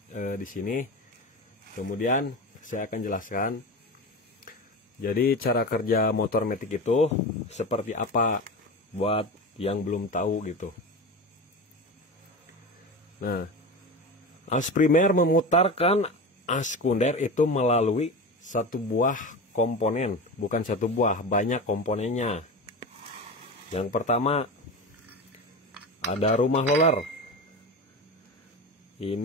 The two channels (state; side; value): normal; both; correlation 0.26